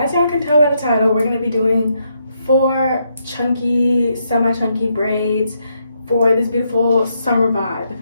y'all can tell by the title, we're going to be doing 4 chunky, semi-chunky braids for this beautiful summer vibe.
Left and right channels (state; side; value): inverted; both; correlation -0.77